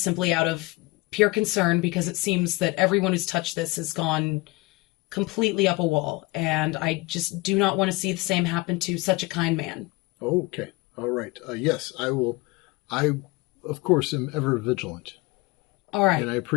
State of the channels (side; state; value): right; quieter; 22.8 dB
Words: simply out of pure concern because it seems that everyone who's touched this has gone completely up a wall, and I just do not want to see the same happen to such a kind man. Okay. All right. Yes, I will. I, of course, am ever vigilant. All right. And I